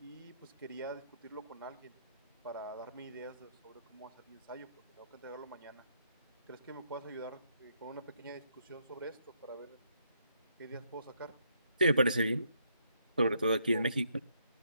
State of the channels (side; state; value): both; inverted; correlation -0.75